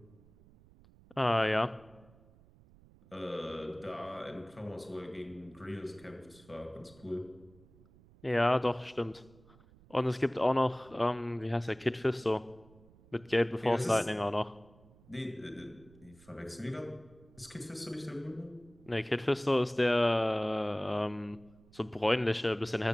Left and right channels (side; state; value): right; noise; rumble, 25 dB below the sound